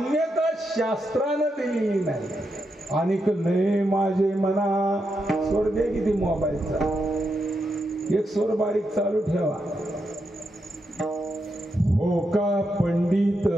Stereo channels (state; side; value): normal; both; correlation 0.84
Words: शास्त्रानं दिलेली नाही. अनिक नये माझे मना. स्वर दे किती मोबाईलचा, एक स्वर बारीक चालू ठेवा. हो का पंडित